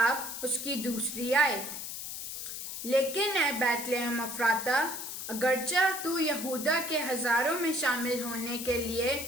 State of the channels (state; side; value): noise; left; hiss, 7 dB below the sound